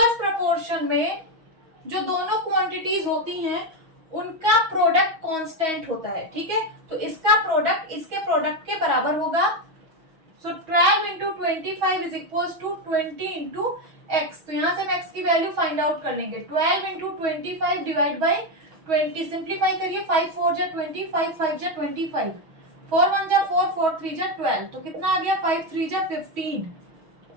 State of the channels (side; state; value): left; late; 6.2 ms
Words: प्रोपोर्शन में जो दोनों क्वांटिटीज होती हैं उनका प्रोडक्ट कांस्टेंट होता है, ठीक है। तो इसका प्रोडक्ट इसके प्रोडक्ट के बराबर होगा। सो 12 into 25 is equals to 20 into x। तो यहाँ से हम x की वैल्यू फाइंड आउट कर लेंगे। 12 into 25 डिवाइड बाई 20, सिंप्लीफाई करिए। 5 4 जा 20, 5 5 जा 25, 4 1 जा 4, 4 3 जा 12, तो कितना आ गया? 5 3 जा 15